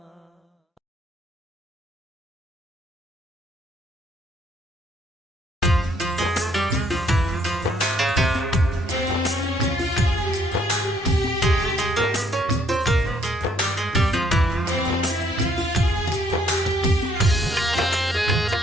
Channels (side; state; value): both; normal; correlation 0.67